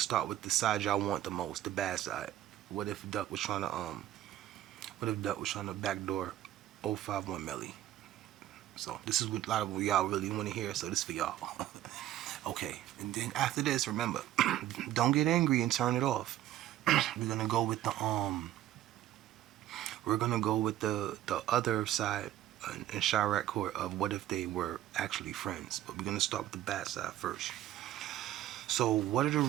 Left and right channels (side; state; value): left; quieter; 13.1 dB